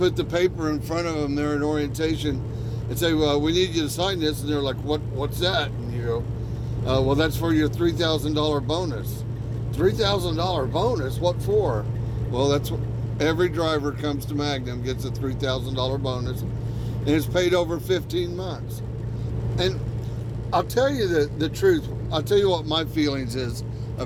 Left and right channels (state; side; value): identical; both; correlation 1.00